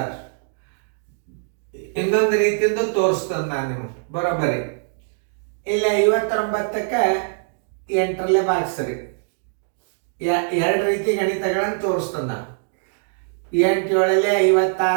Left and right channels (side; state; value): left; silent; digital silence